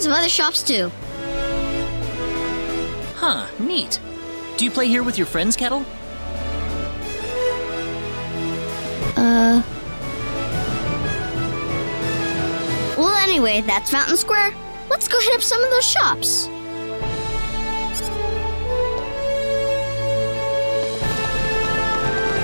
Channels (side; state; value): both; inverted; correlation -1.00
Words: of other shops too. Huh, neat. Do you play here with your friends, Kettle? Well, anyway, that's Fountain Square. Let's go hit up some of those shops.